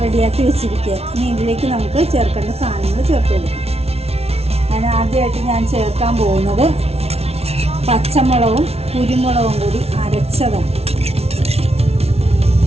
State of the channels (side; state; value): left; late; 0.30 ms